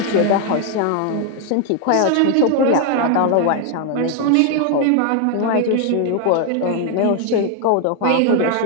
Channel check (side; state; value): both; different; correlation 0.00